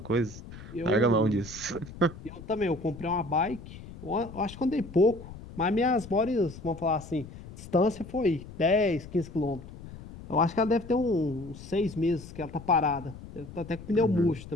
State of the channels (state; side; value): noise; left; rumble, 15 dB below the sound